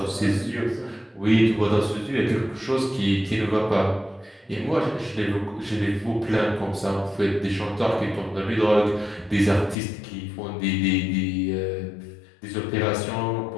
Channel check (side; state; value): right; drops out; at 9.8 s